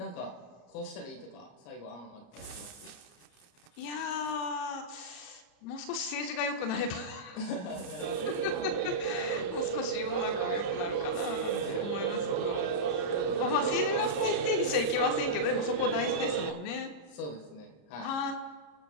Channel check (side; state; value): right; late; 34 ms